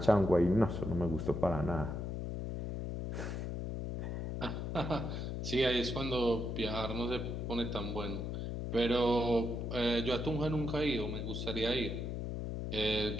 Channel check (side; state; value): left; noise; hum, 3 dB below the sound